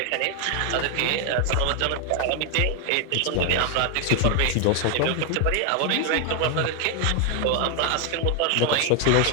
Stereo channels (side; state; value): both; different; correlation 0.01